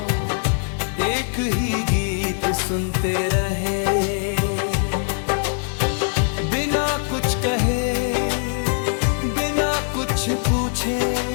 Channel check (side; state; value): right; silent; 62 dB below the other